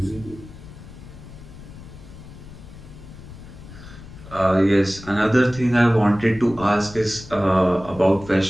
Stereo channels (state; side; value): noise; left; rumble, 16 dB below the sound